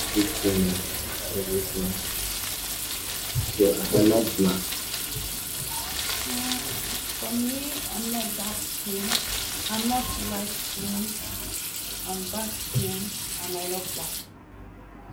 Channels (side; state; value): both; identical; correlation 1.00